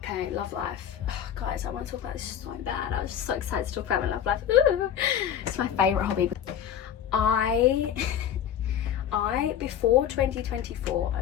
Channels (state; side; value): quieter; right; 9.6 dB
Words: love life. Oh, guys, I want to talk about this so bad. I was just so excited to talk about my love life. Ooh. It's my favourite hobby. I before